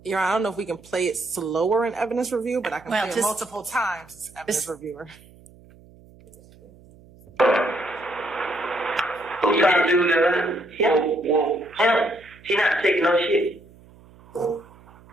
Your Honor, I don't know if we can play it slower in evidence review, but I can Well, play it just- multiple times as evidence reviewer. Who's trying to do that? Well, him. He not taking no shit.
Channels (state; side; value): noise; right; hum, 25 dB below the sound